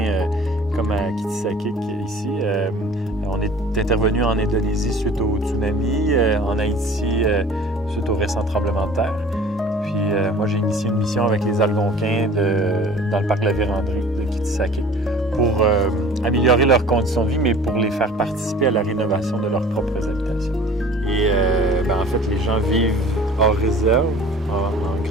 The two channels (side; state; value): both; normal; correlation 0.46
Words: comme à Kitsakik ici. On est intervenu en Indonésie suite au tsunami, en Haïti suite au récent tremblement de terre. Puis moi, j'ai initié une mission avec les Algonquins dans le parc de la Vérandrie de Kitsakik pour améliorer leurs conditions de vie, mais pour les faire participer à la rénovation de leurs propres habitations. Et en fait, les gens vivent hors réserve, en